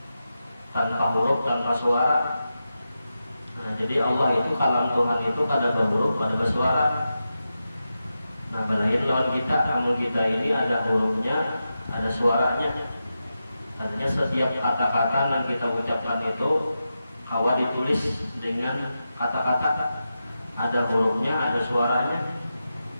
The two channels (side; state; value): both; inverted; correlation -0.90